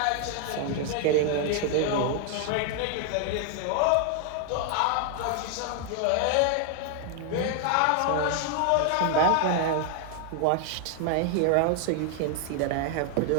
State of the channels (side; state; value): both; different; correlation 0.00